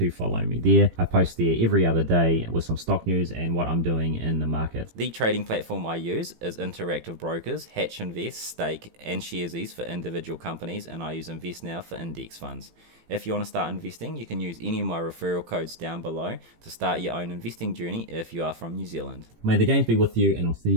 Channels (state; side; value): late; left; 18 ms